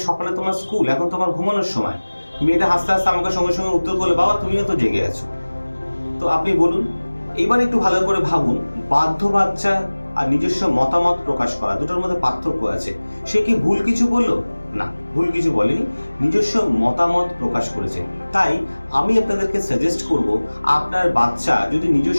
সকালে তোমার স্কুল, এখন তোমার ঘুমানোর সময়। মেয়েটা হাসতে হাসতে আমাকে সঙ্গে সঙ্গে উত্তর করলো, বাবা তুমিও তো জেগে আছো। তো আপনি বলুন, এবার একটু ভালো করে ভাবুন, বাধ্য বাচ্চা আর নিজস্ব মতামত প্রকাশ করা, দুটোর মধ্যে পার্থক্য আছে। সে কি ভুল কিছু বললো? না, ভুল কিছু বলেনি, নিজস্ব মতামত প্রকাশ করেছে। তাই আমি আপনাদেরকে সাজেস্ট করব, আপনার বাচ্চা যদি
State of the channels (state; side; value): inverted; both; correlation -1.00